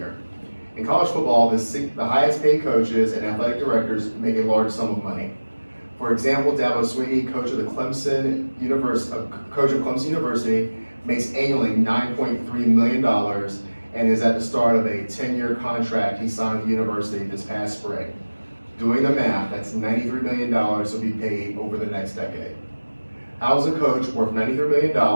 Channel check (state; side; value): inverted; both; correlation -1.00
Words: In college football, the highest paid coaches and athletic directors make a large sum of money. For example, Dabo Swinney, coach of Clemson University, makes annually $9.3 million and is at the start of a 10-year contract he signed with the university this past spring. Doing the math, that's $93 million will be paid over the next decade. How is a coach worth $93